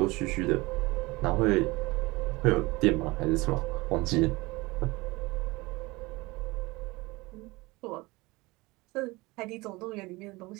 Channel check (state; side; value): quieter; left; 22.8 dB